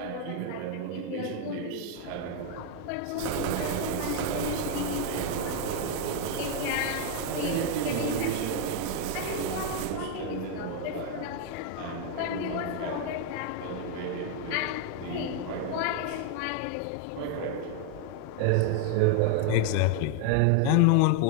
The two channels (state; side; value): different; both; correlation 0.00